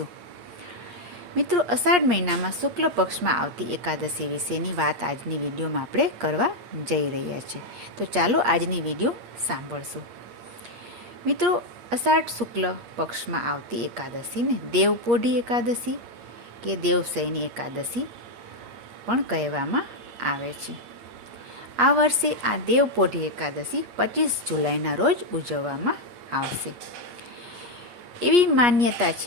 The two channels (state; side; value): late; left; 8.5 ms